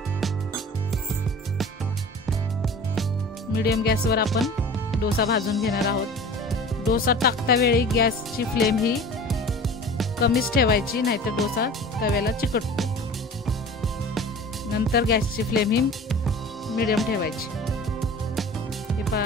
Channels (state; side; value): normal; both; correlation 0.40